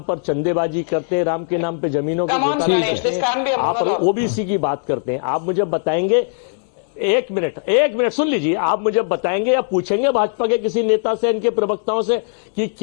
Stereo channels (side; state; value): right; silent; 65 dB below the other